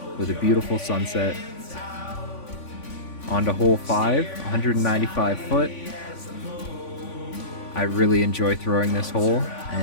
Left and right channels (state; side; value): late; right; 3.5 ms